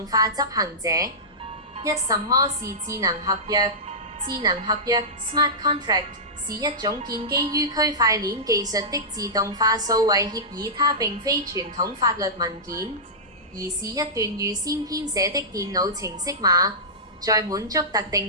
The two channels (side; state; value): both; normal; correlation -0.15